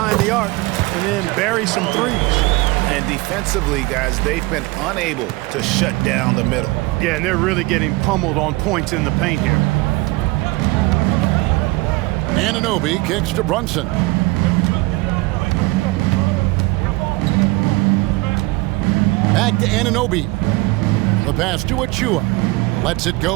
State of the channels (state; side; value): quieter; left; 22.6 dB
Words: the arc and then bury some threes. And defensively, guys, they've been unable to shut down the middle. Yeah, and they're really getting pummeled on points in the paint here. Anunoby kicks to Brunson. Back to Anunoby. The pass to Achua. Lets it